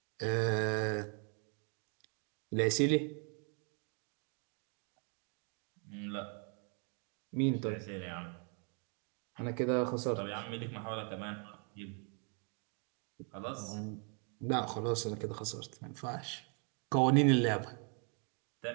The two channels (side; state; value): left; quieter; 38.8 dB